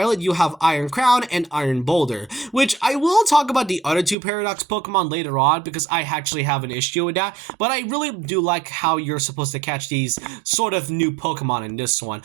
you'll have Iron Crown and Iron Boulder, which I will talk about the other two Paradox Pokemon later on because I actually have an issue with that, but I really do like how you're supposed to catch these sort of new Pokemon in this one,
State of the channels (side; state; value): left; drops out; at 4.2 s